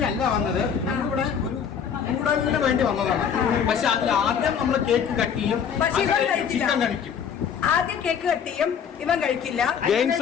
അല്ല വന്നത്, നമ്മളിവിടെ ഒരു കൂടലിന് വേണ്ടി വന്നതാണ്. പക്ഷെ അതിൽ ആദ്യം നമ്മൾ കേക്ക് കട്ട് ചെയ്യും, ചിക്കൻ കഴിക്കും. ആദ്യം കേക്ക് കട്ട് ചെയ്യും, ഇവൻ കഴിക്കില്ല. ഗെയിംസ്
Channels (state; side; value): quieter; right; 7.6 dB